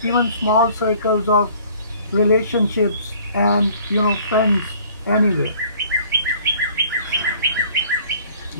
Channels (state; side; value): inverted; both; correlation -0.54